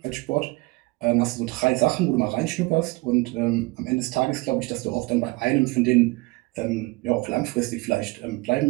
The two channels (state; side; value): quieter; left; 23.8 dB